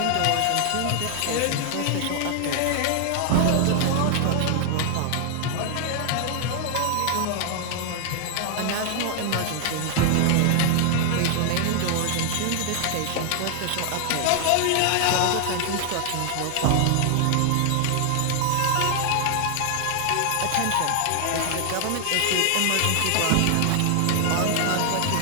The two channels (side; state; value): both; different; correlation 0.00